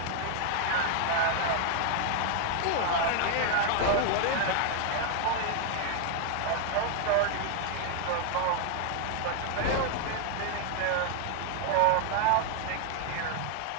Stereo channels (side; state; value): both; different; correlation 0.00